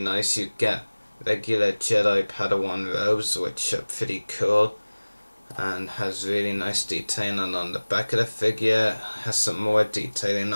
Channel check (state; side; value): inverted; both; correlation -1.00